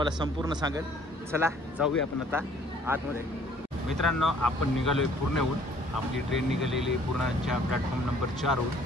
संपूर्ण सांगेल। चला जाऊया आपण आता आतमध्ये। मित्रांनो, आपण निघालोय पूर्णहून। आपली ट्रेन निघालेली आहे पूर्णाच्या प्लॅटफॉर्म नंबर 4वरून।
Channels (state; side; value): normal; both; correlation 0.58